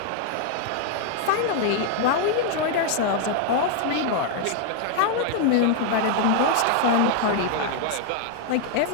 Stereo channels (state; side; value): different; both; correlation 0.00